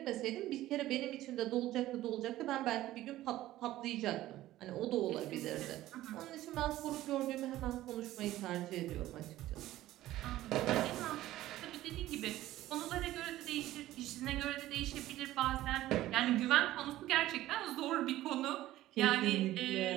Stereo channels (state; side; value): quieter; left; 15.2 dB